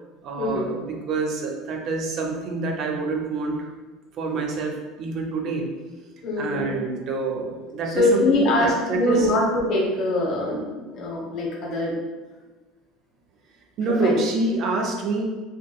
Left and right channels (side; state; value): both; normal; correlation 0.38